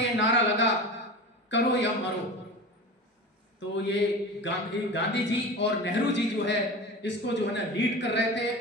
ये नारा लगा करो या मरो। तो ये गांधी जी और नेहरू जी जो है इसको जो है ना लीड कर रहे थे।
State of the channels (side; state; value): both; normal; correlation 0.31